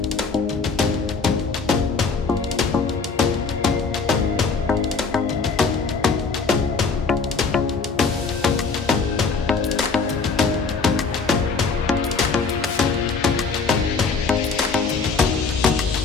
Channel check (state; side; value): quieter; right; 4.7 dB